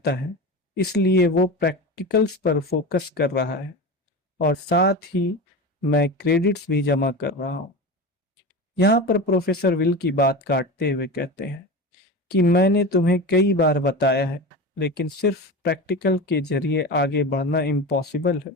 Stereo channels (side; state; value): both; normal; correlation 0.26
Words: है इसलिए वो प्रैक्टिकल्स पर फोकस कर रहा है, और साथ ही मैं क्रेडिट्स भी जमा कर रहा हूँ। यहाँ पर प्रोफेसर विल की बात काटते हुए कहते हैं कि मैंने तुम्हें कई बार बताया है, लेकिन सिर्फ प्रैक्टिकल के जरिए आगे बढ़ना इम्पॉसिबल है